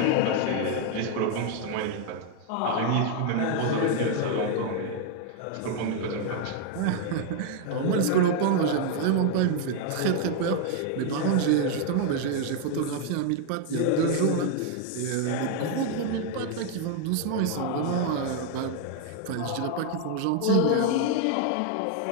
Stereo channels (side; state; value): both; different; correlation 0.00